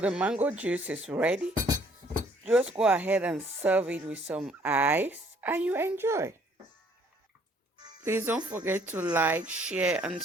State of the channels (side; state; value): both; normal; correlation 0.62